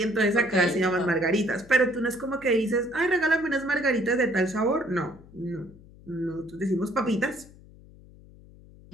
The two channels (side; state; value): left; noise; hum, 22 dB below the sound